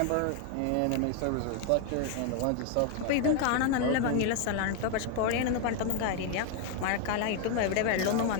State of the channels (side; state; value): both; different; correlation 0.00